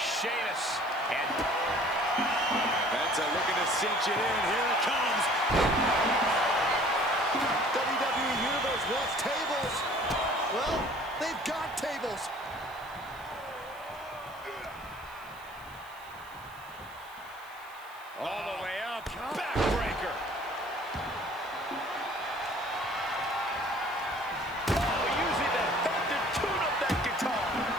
Sheamus, and Penta looking to cinch it in. Here it comes. WWE Universe wants tables. Well, they've got tables. All the way up. Backbreaker. Oh, using that thumb to tune up that guitar.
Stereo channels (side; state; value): right; noise; hiss, 24 dB below the sound